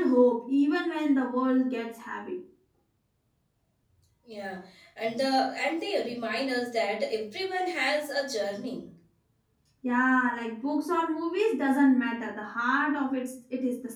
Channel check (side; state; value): both; identical; correlation 1.00